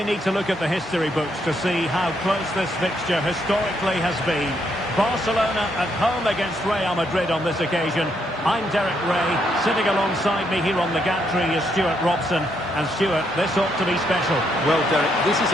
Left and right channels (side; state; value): both; normal; correlation 0.75